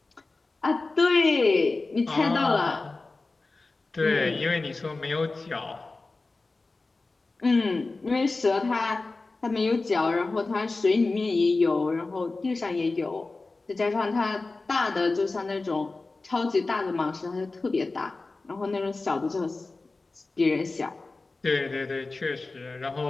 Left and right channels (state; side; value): quieter; right; 3.5 dB